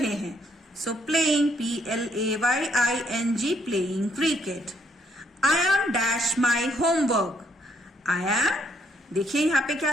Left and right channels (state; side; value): normal; both; correlation 0.71